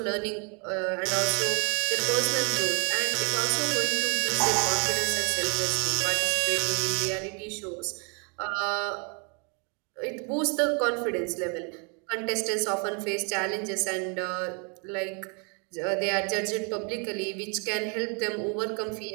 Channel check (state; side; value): quieter; left; 35.1 dB